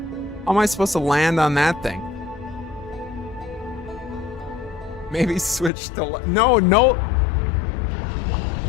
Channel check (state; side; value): drops out; right; at 5.7 s